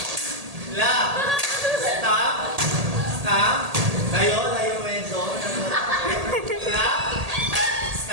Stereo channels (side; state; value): left; late; 1.8 ms